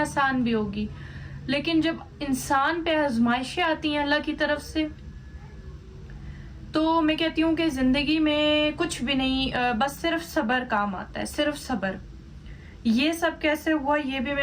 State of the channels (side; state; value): both; identical; correlation 1.00